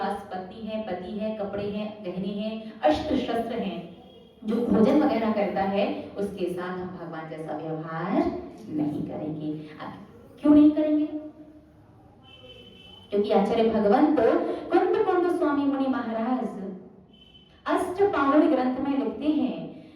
पत्नी है, पति है, कपड़े हैं, गहने हैं, अस्त्र शस्त्र हैं, जो भोजन वगैरह करता है, उसके साथ हम भगवान जैसा व्यवहार नहीं करेंगे। क्यों नहीं करेंगे? क्योंकि आचार्य भगवंत कुंद स्वामी मुनि महाराज अष्टपावड़ ग्रंथ में लिखते हैं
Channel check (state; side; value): identical; both; correlation 1.00